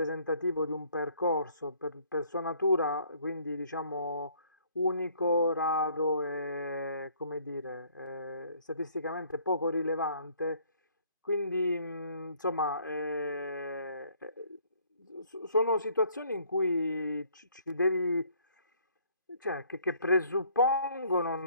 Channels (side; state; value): both; inverted; correlation -0.61